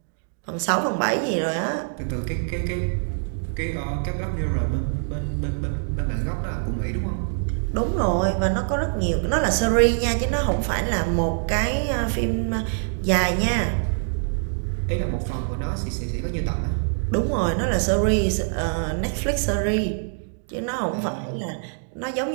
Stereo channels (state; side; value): silent; left; digital silence